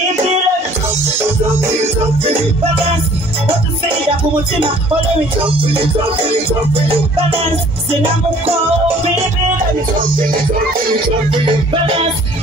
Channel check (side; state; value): both; normal; correlation 0.54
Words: Baby, balance. What to say that umutima? Follow me. Balance. Sinamuko, baby. Balance.